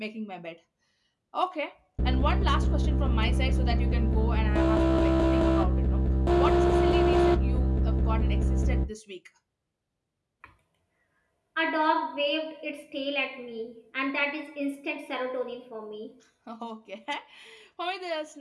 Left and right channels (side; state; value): both; identical; correlation 1.00